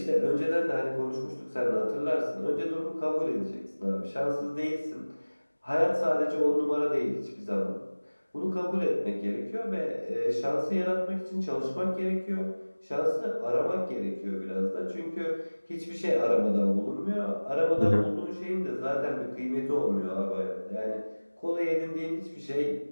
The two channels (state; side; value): inverted; both; correlation -1.00